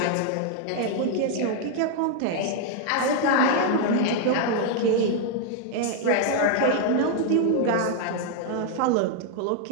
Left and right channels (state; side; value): different; both; correlation 0.00